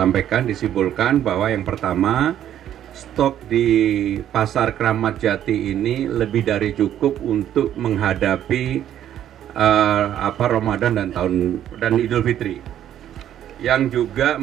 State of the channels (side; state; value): left; quieter; 10.9 dB